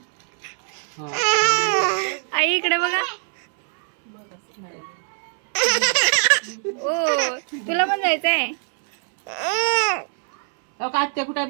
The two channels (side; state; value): left; silent; 64 dB below the other